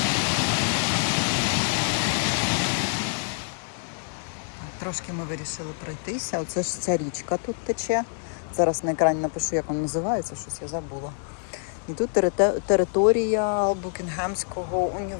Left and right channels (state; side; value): silent; right; digital silence